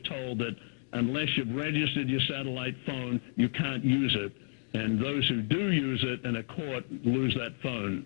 that unless you've registered your satellite phone, you can't use it. And those who do use it in a court lose that phone,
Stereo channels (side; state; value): right; silent; digital silence